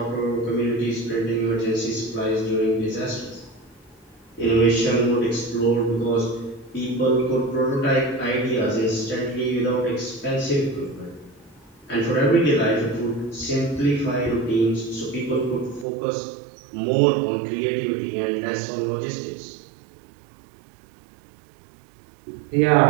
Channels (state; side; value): drops out; left; at 15.9 s